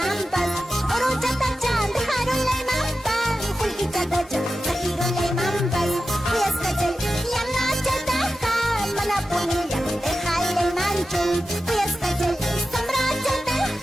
Orochata-chan, dejaron la imampa. Julgichata-chan, sajiron la imampa. Puyascachal, yanachataja, manapunilla, dejale el mancho. Puyascachal,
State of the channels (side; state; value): both; normal; correlation 0.92